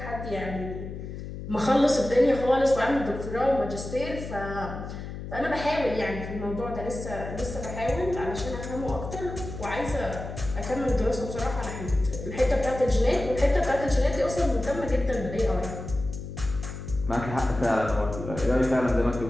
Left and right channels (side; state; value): left; noise; hum, 8 dB below the sound